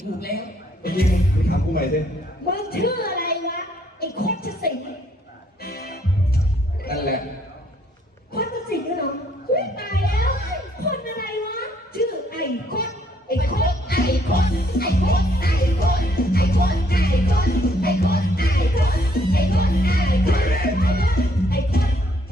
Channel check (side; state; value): both; normal; correlation 0.67